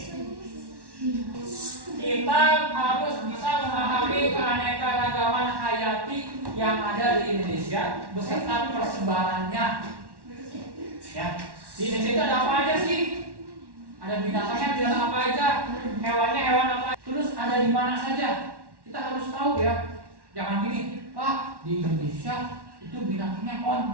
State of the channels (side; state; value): left; late; 1.1 ms